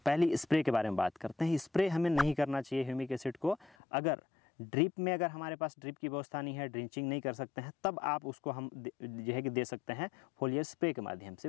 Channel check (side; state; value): right; drops out; at 3.8 s